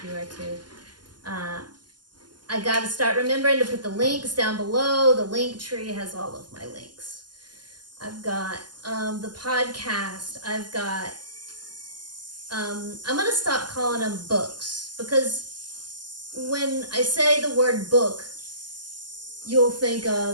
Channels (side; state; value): left; late; 0.71 ms